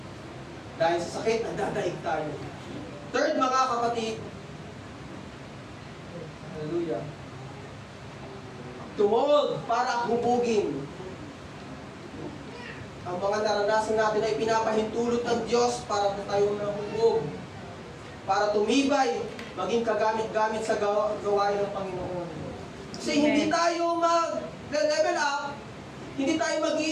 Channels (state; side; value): identical; both; correlation 1.00